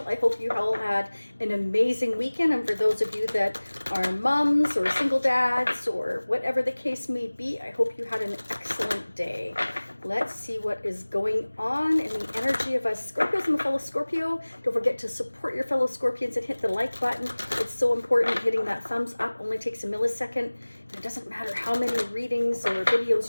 I hope you all had an amazing weekend. And for those of you that are moms or single dads or whatever the case may be, I hope you had an excellent day. Let's see what is going on in the energy of us Scorpios and the fellow Scorpio. Don't forget to support your fellow Scorpions and hit the like button. It's so important. Hitting that thumbs up only takes a millisecond. It doesn't matter how many readings or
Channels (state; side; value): inverted; both; correlation -1.00